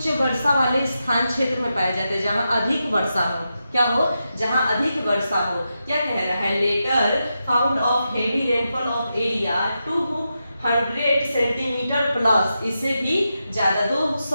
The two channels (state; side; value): inverted; both; correlation -0.88